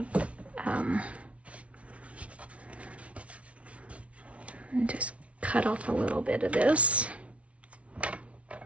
just cut off a little bit of this.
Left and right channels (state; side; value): late; left; 0.063 ms